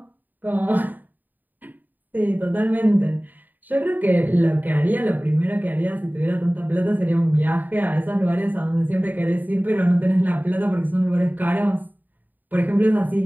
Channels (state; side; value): late; left; 0.088 ms